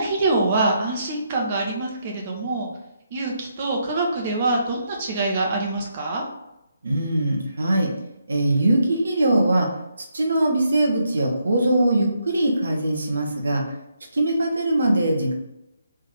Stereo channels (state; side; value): inverted; both; correlation -0.78